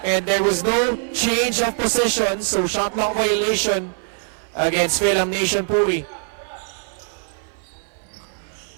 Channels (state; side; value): silent; left; 57 dB below the other